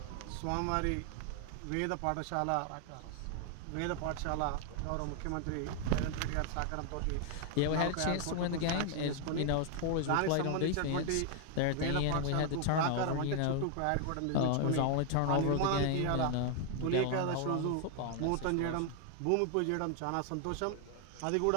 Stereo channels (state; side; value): different; both; correlation 0.00